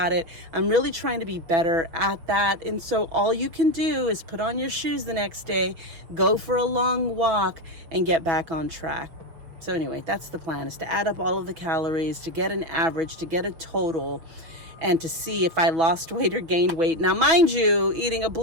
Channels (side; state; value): left; late; 6.3 ms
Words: it. I'm really trying to be better at that. And so all you can do is put on your shoes the next day, go for a long walk, and get back on track. So anyway, that's the plan, is to add up all of the calories, to get an average, to get a total, and to see if I lost weight or gained weight. Now, mind you, eating a